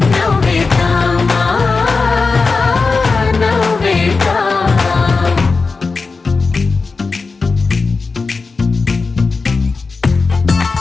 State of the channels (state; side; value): quieter; right; 4.3 dB